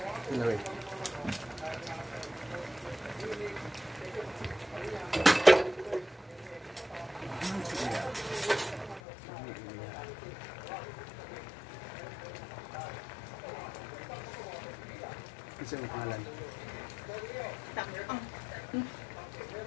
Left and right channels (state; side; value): drops out; right; at 9.0 s